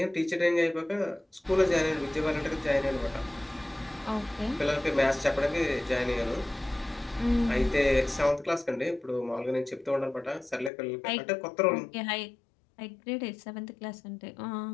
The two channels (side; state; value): right; drops out; at 10.7 s